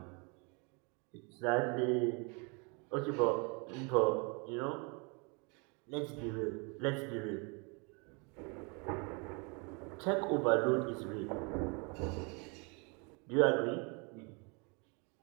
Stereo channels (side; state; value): left; quieter; 32.4 dB